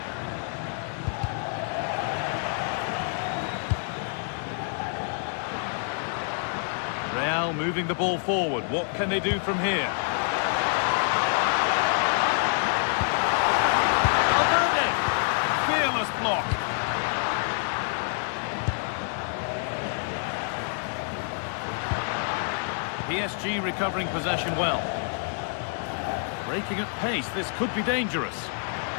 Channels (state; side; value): silent; right; 60 dB below the other